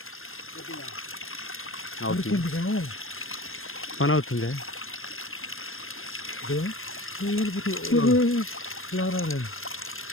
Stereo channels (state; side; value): late; right; 0.60 ms